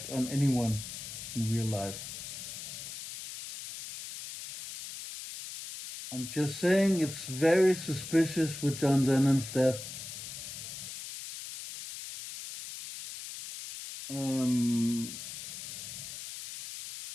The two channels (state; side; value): noise; left; hiss, 9 dB below the sound